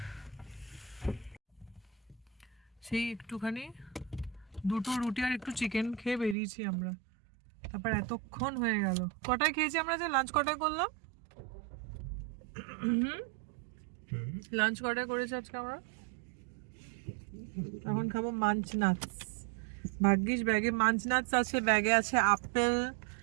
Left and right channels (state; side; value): drops out; left; at 6.4 s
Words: সেই একটুখানি দুটো রুটি আর একটু চিকেন খেয়ে বেরিয়েছি আমরা, তারপর এতক্ষণ হয়ে গেল। কটায় খেয়েছি আমরা, যে লাঞ্চ কটায় করলাম? লাঞ্চ কটায় করেছি আজকে আমরা? এখন খাবো মাঞ্চ নাটস। ভাগ্যিস ব্যাগে মাঞ্চ নাটস আছে, ব্যাগে আছে আপেল,